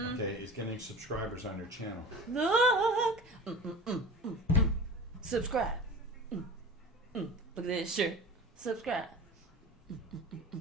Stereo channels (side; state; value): both; normal; correlation 0.34